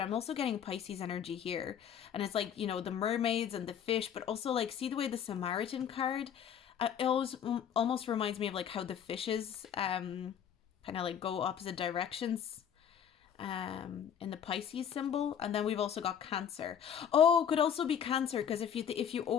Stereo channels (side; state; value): right; quieter; 8.6 dB